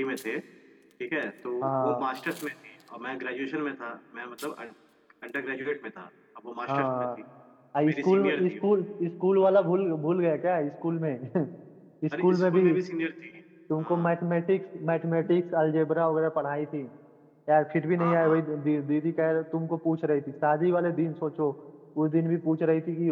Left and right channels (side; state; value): both; identical; correlation 1.00